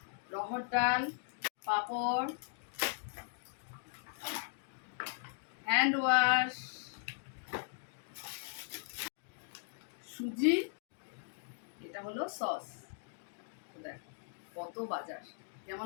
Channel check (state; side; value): silent; right; digital silence